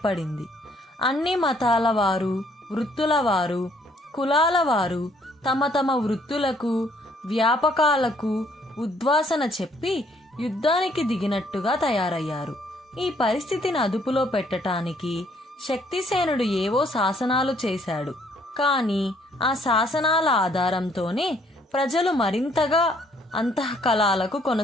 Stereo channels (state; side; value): normal; both; correlation 0.65